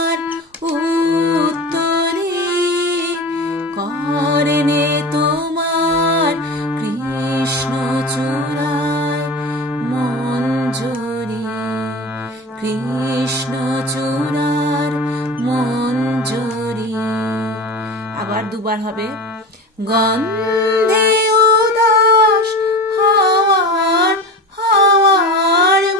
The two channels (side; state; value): both; normal; correlation 0.29